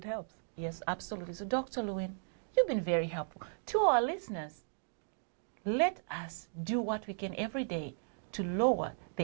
helps. Yes, absolutely. So, Dr. Lewin, you've been very helpful. To our listeners, let us do what we can every day to lower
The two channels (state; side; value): silent; left; digital silence